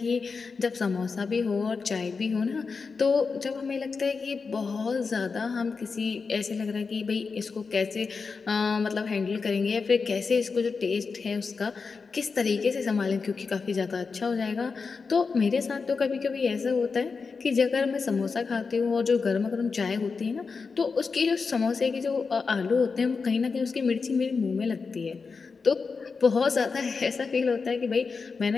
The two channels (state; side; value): quieter; right; 4.9 dB